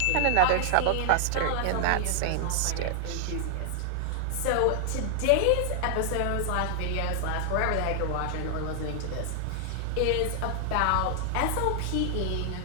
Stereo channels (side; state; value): both; different; correlation 0.00